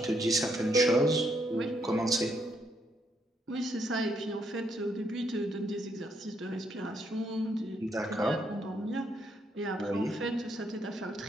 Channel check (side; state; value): both; normal; correlation 0.74